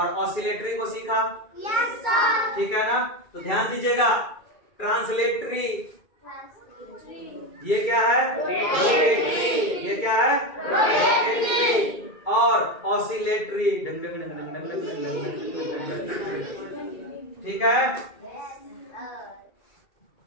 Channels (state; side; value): late; right; 2.3 ms